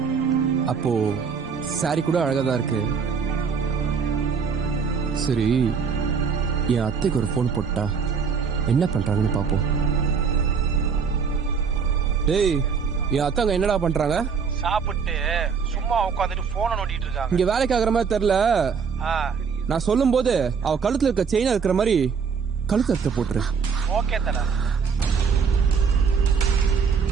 அப்போ சாரி கூட அழகாதான் இருக்கு. சரி, என் அத்தைக்கு ஒரு போன் போட்டா என்ன பண்றாங்கன்னு பாப்போம். டேய், என் அத்தாங்க என்னடா பண்றாங்க? சாப்பிட்டு சும்மா உட்காந்துட்டு போனை நோண்டிட்டு இருக்காங்க. இங்க வேலைக்கு ஆகுற மாதிரி தெரியல. நான் சொல்லும் போது அவ கழுத்துல இருக்க செயினா இருக்கிற மாதிரி கழுத்து அறுத்து போட்டுரு. ஓகே தல.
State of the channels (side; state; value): left; quieter; 6.0 dB